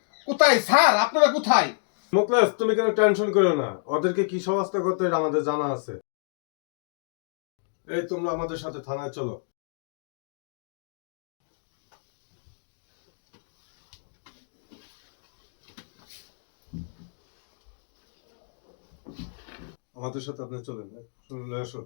কোথায় স্যার, আপনারা কোথায়? মুকলেশ, তুমি কেন টেনশন করো না, ওদেরকে কি সমস্ত করতে হয় আমাদের জানা আছে। এই তোমরা আমাদের সাথে থানায় চলো। আমাদের সাথে আপনি চলেন, শুনলে আসো।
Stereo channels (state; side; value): silent; right; digital silence